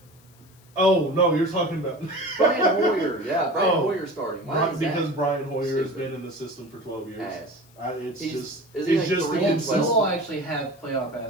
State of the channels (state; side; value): noise; left; hiss, 29 dB below the sound